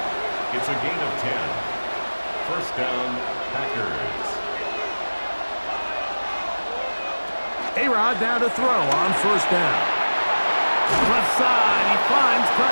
It's a gain of 10. First down, Packers. A-Rod now to throw on first down. Left side, he finds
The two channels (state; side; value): inverted; both; correlation -1.00